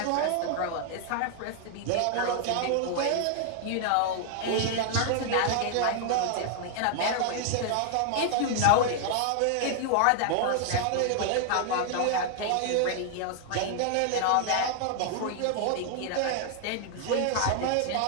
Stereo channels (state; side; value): different; both; correlation 0.00